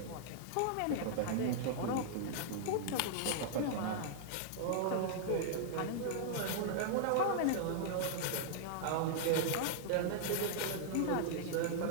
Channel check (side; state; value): both; different; correlation -0.01